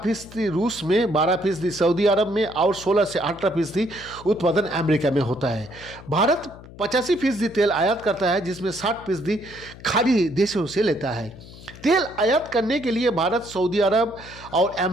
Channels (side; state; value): left; noise; hum, 18 dB below the sound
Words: रूस में, 12% सऊदी अरब में और 16 से 18% उत्पादन अमेरिका में होता है। भारत 85% तेल आयात करता है, जिसमें 60% खाड़ी देशों से लेता है। तेल आयात करने के लिए भारत सऊदी अरब और